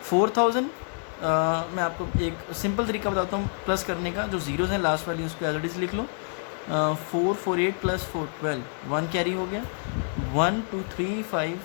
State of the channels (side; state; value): right; silent; 60 dB below the other